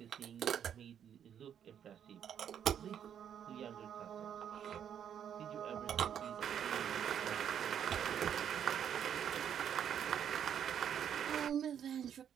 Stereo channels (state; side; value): quieter; left; 9.0 dB